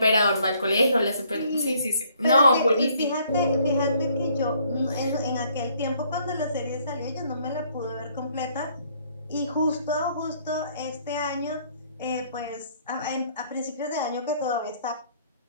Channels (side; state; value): both; inverted; correlation -0.64